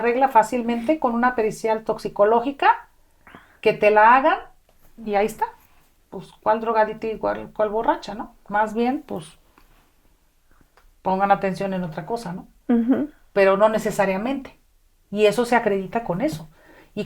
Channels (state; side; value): identical; both; correlation 1.00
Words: fácilmente con una pericial toxicológica que te la hagan y ahí está. Pues, ¿cuál drogadita y cuál borracha, no? Más bien, pues, pongan atención en otra cosa, ¿no? Ujú. Pero no necesariamente. Y eso se acredita con eso. Y